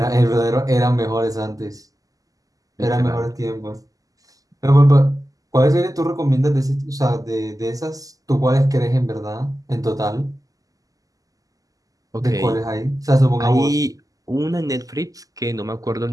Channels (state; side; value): late; left; 0.17 ms